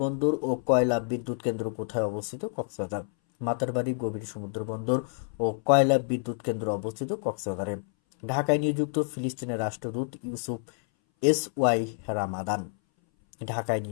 বন্দর ও কয়লা বিদ্যুৎ কেন্দ্র কোথায় অবস্থিত? কক্সবাজার। মাতারবাড়ি গভীর সমুদ্র বন্দর ও কয়লা বিদ্যুৎ কেন্দ্র অবস্থিত কক্সবাজারে। ঢাকায় নিযুক্ত ফিলিস্তিনের রাষ্ট্রদূত ইউসুফ এস.ওয়াই রামাদান। ঢাকায়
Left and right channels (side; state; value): right; silent; 59 dB below the other